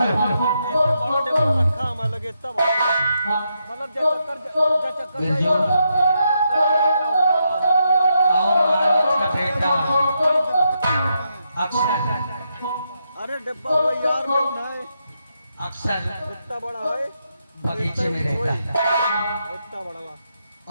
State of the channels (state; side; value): inverted; both; correlation -0.81